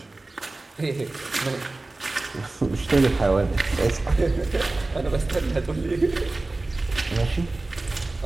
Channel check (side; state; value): left; quieter; 3.1 dB